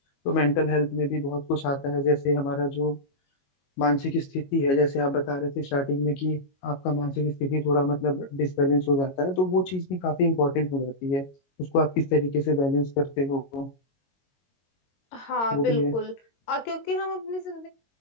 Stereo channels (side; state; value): right; late; 22 ms